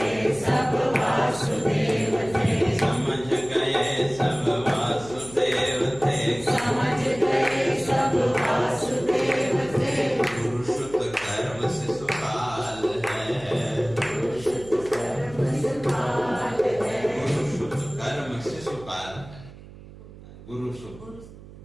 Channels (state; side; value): noise; right; hum, 18 dB below the sound